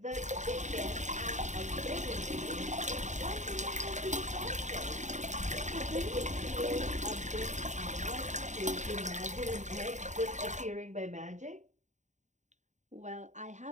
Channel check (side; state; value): left; late; 0.34 ms